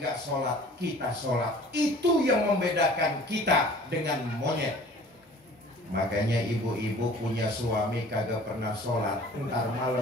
sholat, kita sholat. Itu yang membedakan kita dengan monyet. Makanya ibu-ibu punya suami kagak pernah sholat, ntar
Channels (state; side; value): normal; both; correlation 0.48